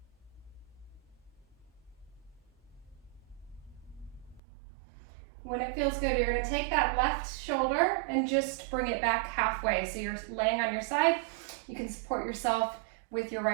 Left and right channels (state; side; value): drops out; left; at 4.4 s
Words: When it feels good, you're gonna take that left shoulder and just bring it back halfway. So you're laying on your side. You can support yourself with your